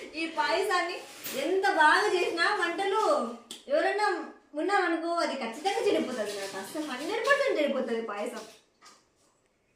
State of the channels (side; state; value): both; identical; correlation 1.00